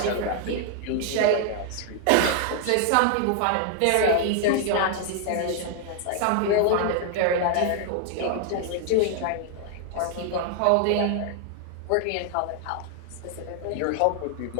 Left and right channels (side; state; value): both; different; correlation 0.00